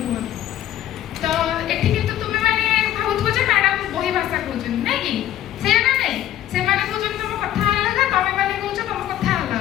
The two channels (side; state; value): right; quieter; 12.3 dB